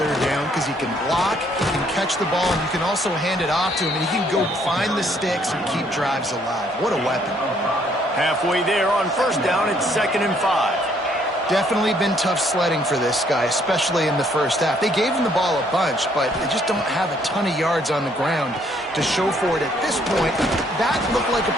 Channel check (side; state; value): both; normal; correlation 0.66